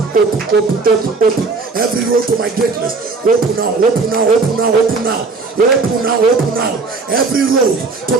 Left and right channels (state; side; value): quieter; left; 4.1 dB